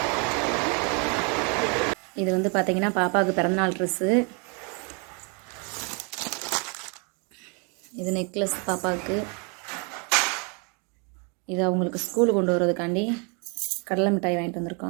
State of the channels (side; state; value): left; quieter; 34.8 dB